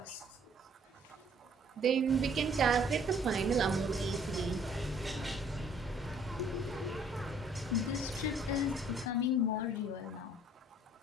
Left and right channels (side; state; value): both; normal; correlation 0.59